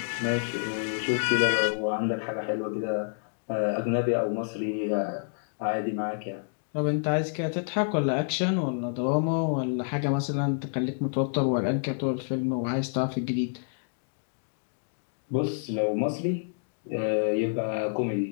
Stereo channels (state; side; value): silent; right; digital silence